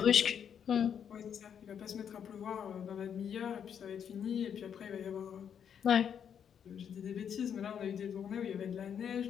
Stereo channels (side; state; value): right; quieter; 8.2 dB